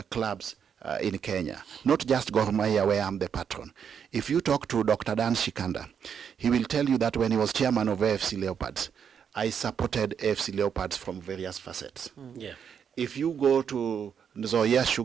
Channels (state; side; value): quieter; left; 7.6 dB